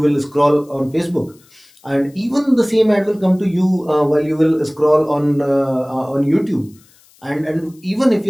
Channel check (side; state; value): left; noise; hiss, 30 dB below the sound